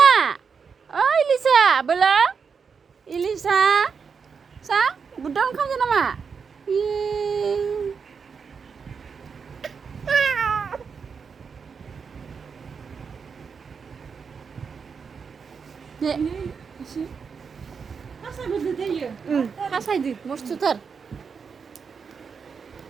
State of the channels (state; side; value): quieter; left; 5.9 dB